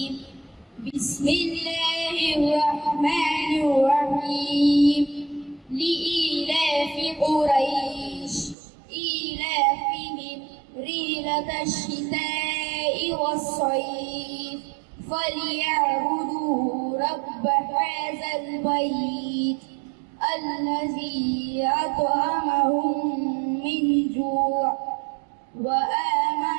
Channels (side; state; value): left; drops out; at 8.6 s